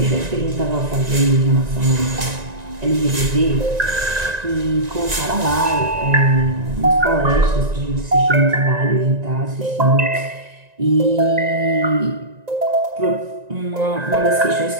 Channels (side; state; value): left; late; 1.9 ms